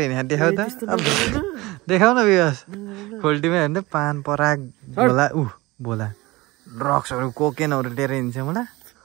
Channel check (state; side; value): quieter; left; 21.3 dB